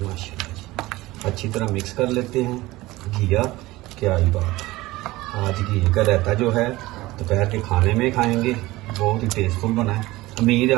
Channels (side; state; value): left; quieter; 19.0 dB